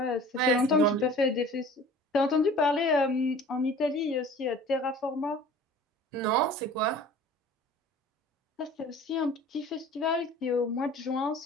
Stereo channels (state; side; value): normal; both; correlation 0.45